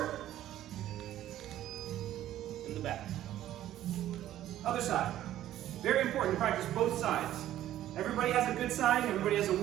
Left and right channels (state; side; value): quieter; left; 12.9 dB